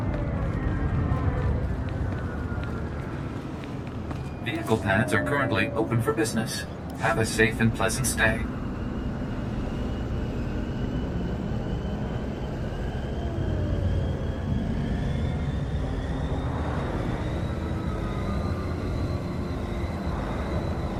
Vehicle pads are currently open for business. Have a safe and pleasant stay.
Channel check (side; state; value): both; identical; correlation 1.00